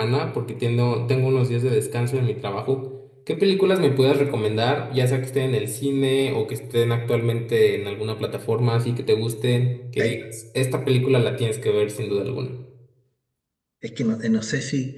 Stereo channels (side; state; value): both; identical; correlation 1.00